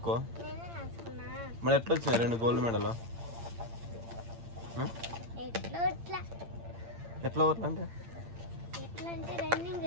మరి ఎట్లా వచ్చినాయి 2 గోల్డ్ మెడల్? ఎట్లా అంటే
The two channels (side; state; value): left; late; 8.8 ms